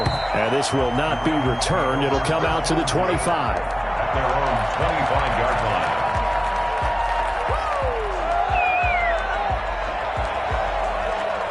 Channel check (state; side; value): identical; both; correlation 1.00